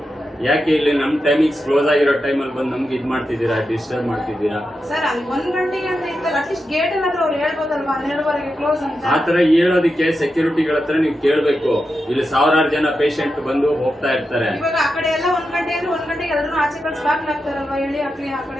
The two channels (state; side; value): normal; both; correlation 0.88